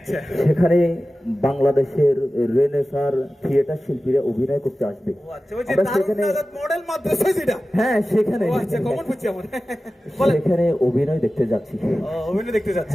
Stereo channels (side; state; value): both; normal; correlation 0.95